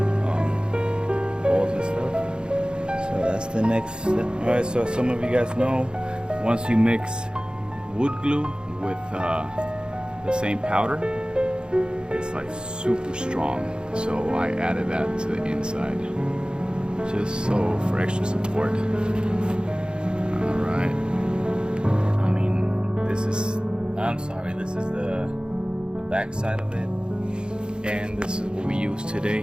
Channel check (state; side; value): late; left; 0.050 ms